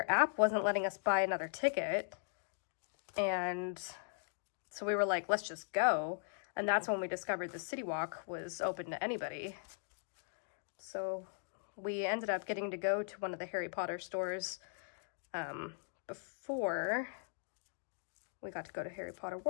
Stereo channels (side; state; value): right; silent; digital silence